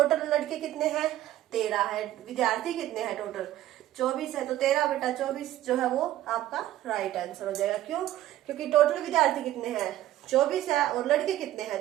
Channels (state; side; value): quieter; left; 13.9 dB